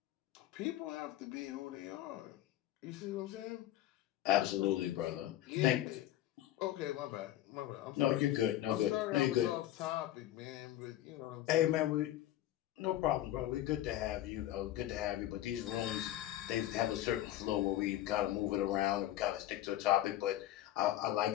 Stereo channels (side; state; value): right; quieter; 13.7 dB